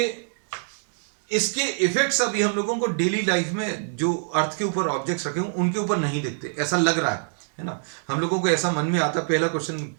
इसके इफेक्ट्स अभी हम लोगों को डेली लाइफ में जो अर्थ के ऊपर ऑब्जेक्ट्स रखे हों उनके ऊपर नहीं दिखते, ऐसा लग रहा है ना. हम लोगों को ऐसा मन में आता, पहला क्वेश्चन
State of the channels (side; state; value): left; silent; digital silence